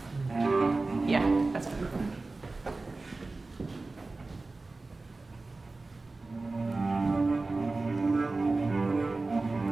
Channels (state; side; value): quieter; left; 3.4 dB